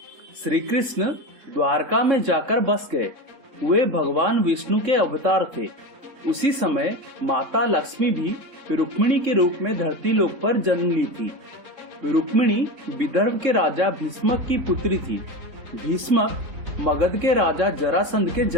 श्री कृष्ण द्वारका में जाकर बस गए। वे भगवान विष्णु के अवतार थे। उसी समय माता लक्ष्मी भी रुक्मिणी के रूप में धरती लोक पर जन्म ली थी। रुक्मिणी विदर्भ के राजा भीष्मक की पुत्री थी। भीष्मक मगध के राजा जरासंध के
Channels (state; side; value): late; left; 3.7 ms